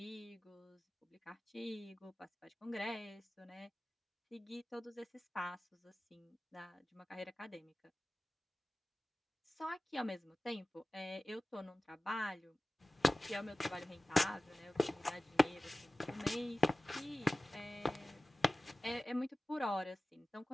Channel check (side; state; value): both; normal; correlation 0.96